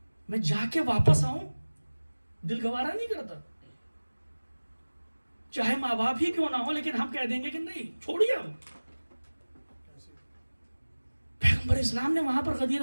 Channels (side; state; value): both; inverted; correlation -1.00